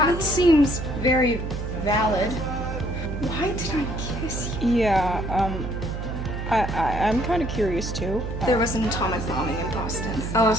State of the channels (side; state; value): right; noise; hum, 5 dB below the sound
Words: me? seems very valid. Why did I kiss you? Yeah, I'm kind of curious too. There was an atomic bombing in Boston. Oh,